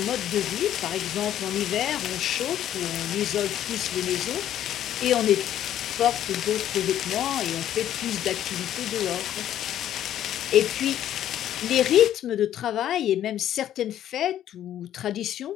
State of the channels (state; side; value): quieter; right; 11.4 dB